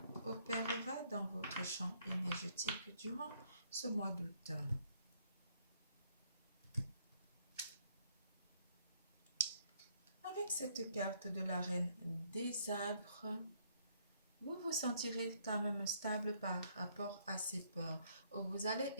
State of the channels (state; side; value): inverted; both; correlation -0.67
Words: opérera dans votre champ énergétique durant ce mois d'août. Avec cette carte de la reine des arbres, vous vous sentirez quand même stable par rapport à ces peurs. Vous allez